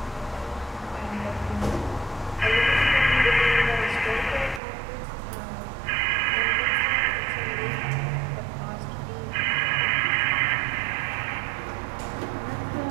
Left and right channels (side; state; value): left; drops out; at 4.6 s